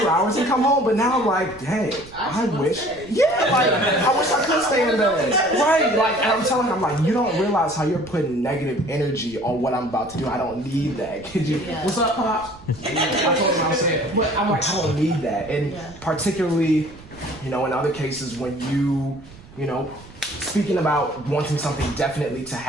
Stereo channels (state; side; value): noise; right; rumble, 21 dB below the sound